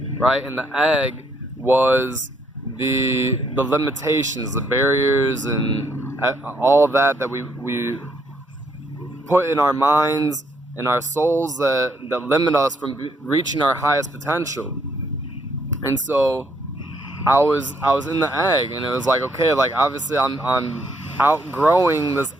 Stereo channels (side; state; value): both; normal; correlation 0.71